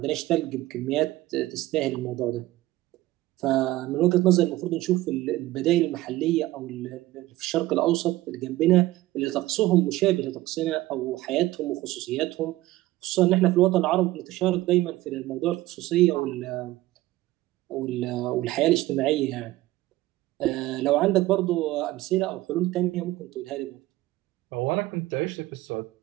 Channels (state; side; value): quieter; left; 17.1 dB